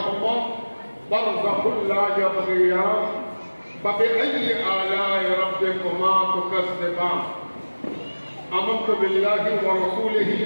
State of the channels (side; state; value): both; inverted; correlation -1.00